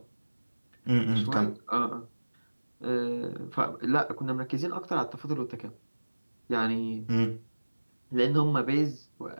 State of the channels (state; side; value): inverted; both; correlation -1.00